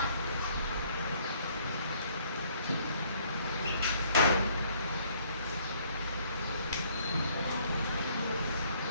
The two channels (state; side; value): inverted; both; correlation -0.63